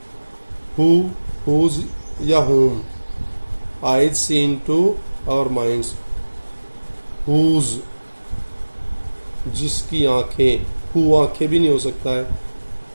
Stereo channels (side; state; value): both; inverted; correlation -1.00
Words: हु, हुज या whom, eyes see into our minds. Whose, जिसकी आंखें। हु आंखें भी नहीं हो सकता है,